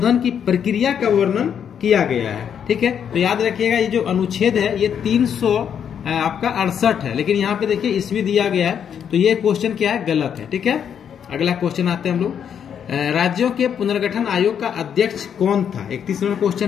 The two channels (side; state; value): right; quieter; 8.2 dB